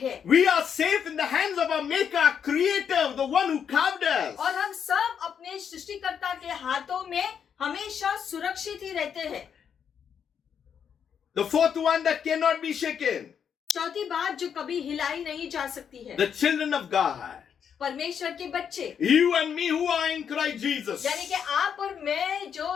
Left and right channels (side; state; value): right; quieter; 7.7 dB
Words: है। We are safe in the hands of our Maker, our Creator, the one who carved us. और हम सब अपने सृष्टिकर्ता के हाथों में हमेशा सुरक्षित ही रहते हैं। The fourth one that cannot be shaken. चौथी बात जो कभी हिलाई नहीं जा सकती है, The children of God. परमेश्वर के बच्चे, You and me who are in Christ Jesus. यानी कि आप और मैं